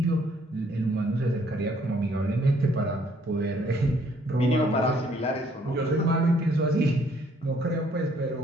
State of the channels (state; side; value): normal; both; correlation 0.65